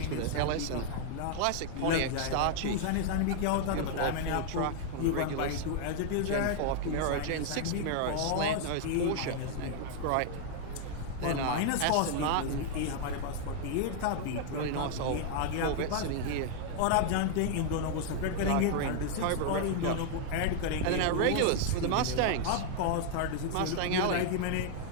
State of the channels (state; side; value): different; both; correlation 0.00